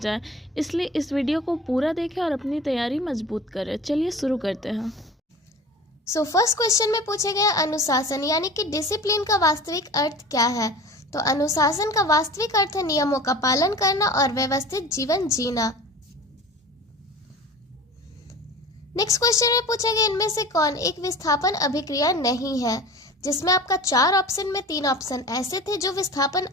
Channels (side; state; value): both; normal; correlation 0.38